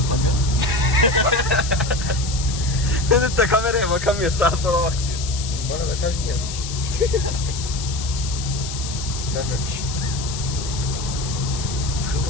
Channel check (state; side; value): noise; left; hiss, 8 dB below the sound